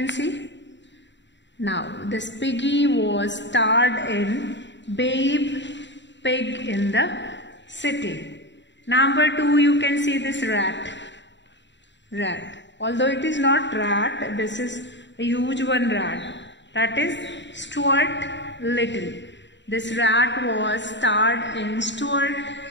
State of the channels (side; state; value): right; late; 0.52 ms